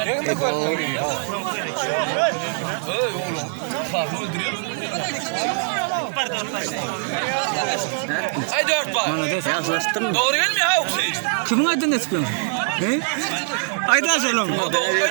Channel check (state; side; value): silent; left; 58 dB below the other